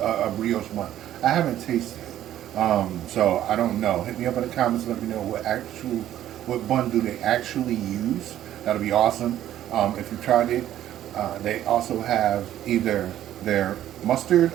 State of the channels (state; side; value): quieter; left; 12.2 dB